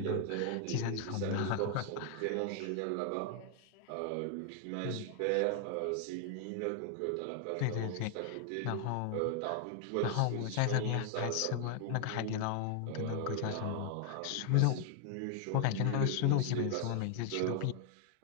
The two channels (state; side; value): different; both; correlation 0.00